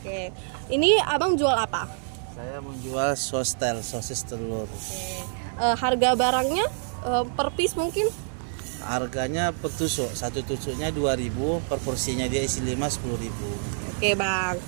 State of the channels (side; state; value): left; silent; 59 dB below the other